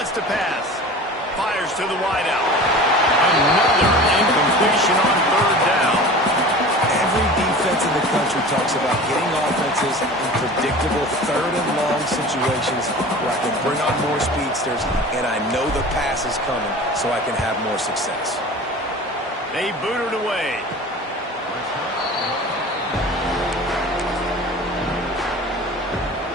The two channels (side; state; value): both; normal; correlation 0.38